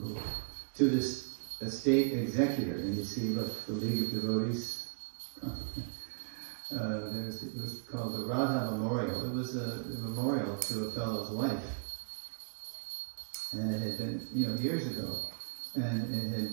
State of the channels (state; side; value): silent; left; digital silence